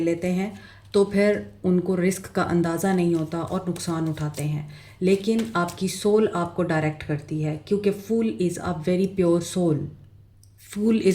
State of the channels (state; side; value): identical; both; correlation 1.00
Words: लेते हैं, तो फिर उनको रिस्क का अंदाज़ा नहीं होता और नुकसान उठाते हैं। लेकिन आपकी सोल आपको डायरेक्ट करती है, क्योंकि fool is a very pure soul. Fool